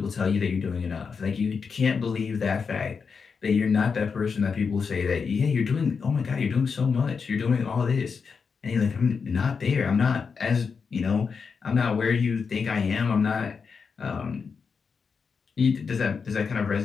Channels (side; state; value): right; quieter; 5.6 dB